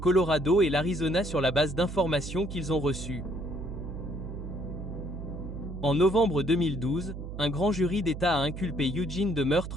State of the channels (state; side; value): noise; right; hum, 8 dB below the sound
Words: et l'Arizona sur la base d'informations qu'ils ont reçues. En novembre 2012, un grand jury d'État a inculpé Eugene de